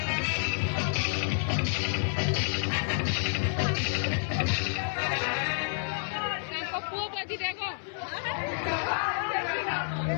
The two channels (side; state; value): right; silent; 58 dB below the other